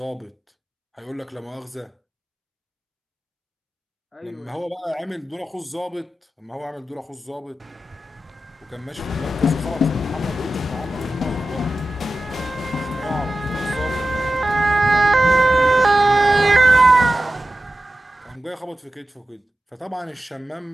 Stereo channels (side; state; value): both; normal; correlation 0.94